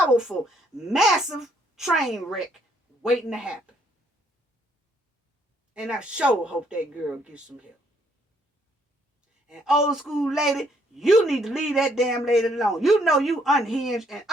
massive train wreck waiting to happen. And I sure hope that girl gets some help. And old school lady, you need to leave that damn lady alone. You know you unhinged and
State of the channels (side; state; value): both; normal; correlation 0.68